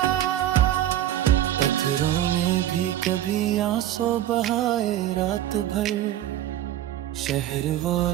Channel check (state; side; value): quieter; left; 12.6 dB